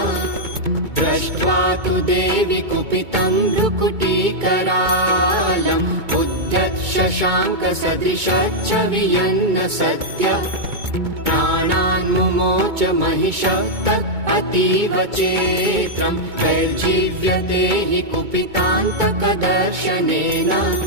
दृष्ट्वा तु देवी कुपितं भ्रुकुटीकरालम् उद्यत् शशाङ्कसदृशच्च वियन्न सत्य प्राणान् मुमोच महिषः तत् अतीव चेत्रम् वैर्जीव्यते हि कुपितान्तकदर्शनेन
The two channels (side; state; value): left; late; 2.2 ms